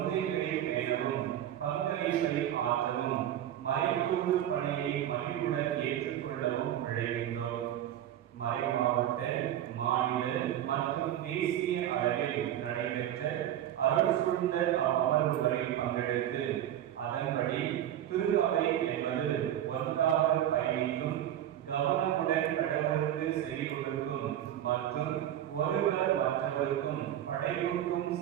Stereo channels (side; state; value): left; quieter; 11.5 dB